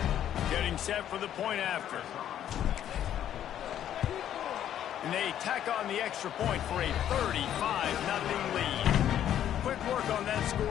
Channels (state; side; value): quieter; right; 10.7 dB